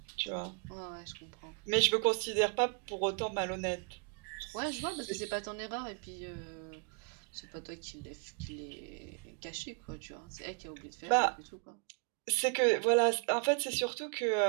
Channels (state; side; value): quieter; left; 36.9 dB